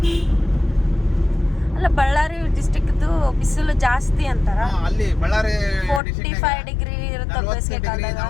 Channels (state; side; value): drops out; right; at 6.0 s